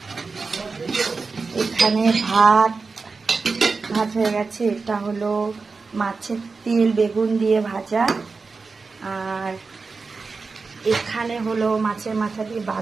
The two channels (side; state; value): left; quieter; 4.4 dB